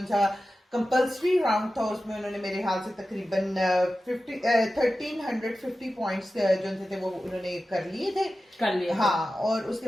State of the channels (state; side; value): normal; both; correlation 0.94